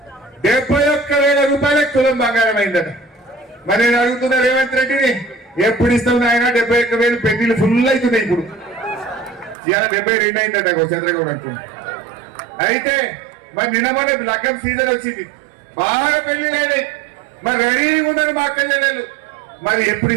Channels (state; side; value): drops out; left; at 9.6 s